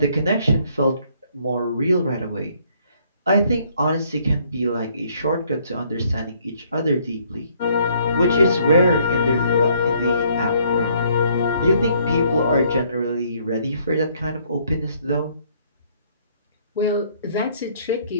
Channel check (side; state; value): both; inverted; correlation -0.65